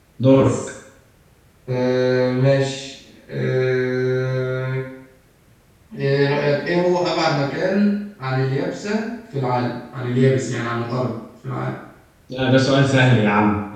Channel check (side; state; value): both; identical; correlation 1.00